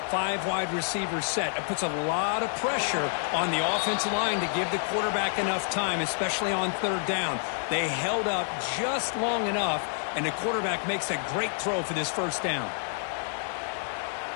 5 wide receiver set. It puts a lot of pressure on the offensive line to give the quarterback enough time, especially on 3rd down. They held up just long enough, and the quarterback makes a great throw for this 1st down.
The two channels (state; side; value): silent; right; digital silence